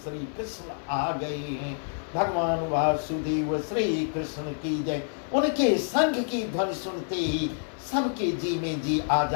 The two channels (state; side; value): silent; right; digital silence